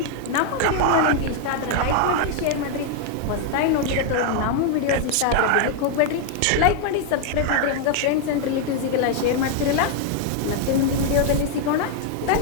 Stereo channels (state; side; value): different; both; correlation 0.00